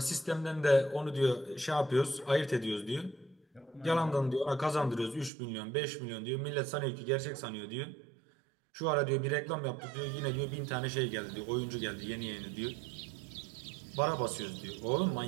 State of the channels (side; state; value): left; drops out; at 5.3 s